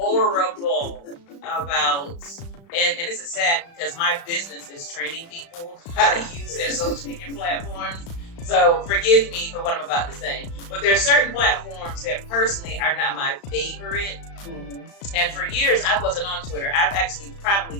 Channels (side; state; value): right; late; 35 ms